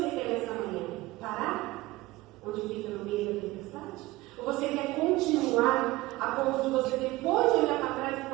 quer nessa manhã? Parar? Onde fica no meio da tempestade? Ou você quer continuar a ponto de você depois olhar para trás e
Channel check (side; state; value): left; quieter; 19.3 dB